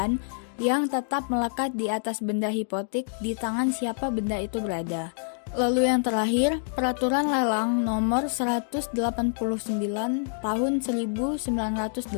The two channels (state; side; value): silent; right; 60 dB below the other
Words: yang tetap melekat di atas benda hipotek di tangan siapa benda itu berada. Lalu yang terakhir, Peraturan Lelang Nomor 189 Tahun 1908.